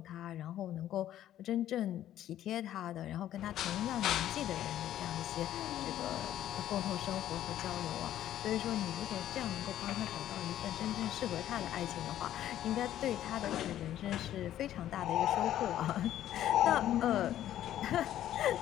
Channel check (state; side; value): quieter; right; 12.1 dB